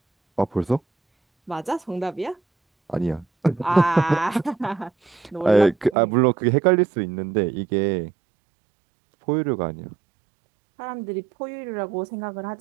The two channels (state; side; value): drops out; left; at 6.0 s